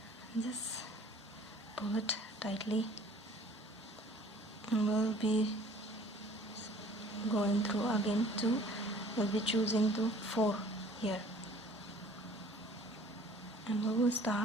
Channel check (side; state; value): both; normal; correlation 0.52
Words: Just pull it tightly, and we'll be going through again to, we'll be choosing the 4 here, and we will